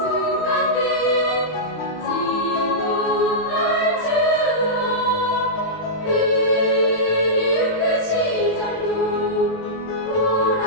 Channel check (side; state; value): right; late; 19 ms